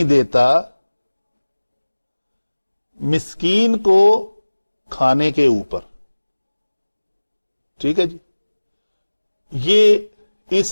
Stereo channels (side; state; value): both; inverted; correlation -1.00